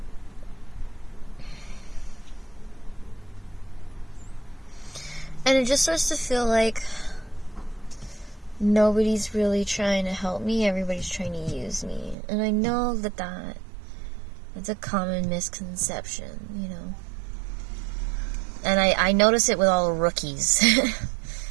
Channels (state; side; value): drops out; left; at 12.2 s